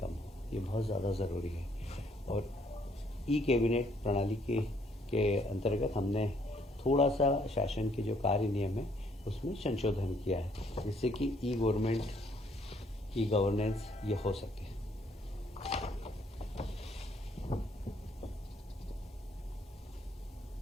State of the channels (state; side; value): normal; both; correlation 0.67